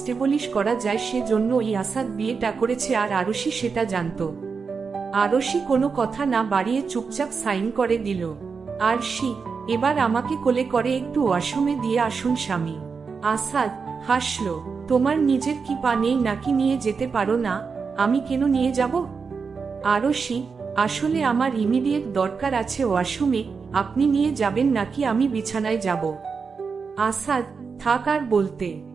করা যায় সেজন্য এই আসাদ বিয়েটা করেছে, আর আরুষি সেটা জানত। আরুষি কোনো কথা না বাড়িয়ে চুপচাপ সাইন করে দিল। আরশি, এবার আমাকে কোলে করে একটু ওয়াশরুমে দিয়ে আসুন স্বামী। আসাদ হাসল, তোমার নিজের কি পা নেই নাকি নিয়ে যেতে পারো না? আমি কেন নিয়ে যাব? আরুষি, আসলে আমার ইমিডিয়েট দরকার আছে ওয়াশরুমে, আপনি নিয়ে যাবেন নাকি আমি বিছানায় যাব? আসাদ, থাক আর বলতে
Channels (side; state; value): left; quieter; 5.3 dB